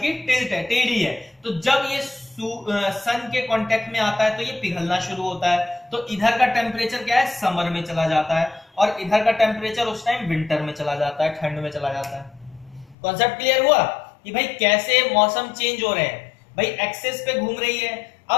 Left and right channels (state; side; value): drops out; right; at 13.0 s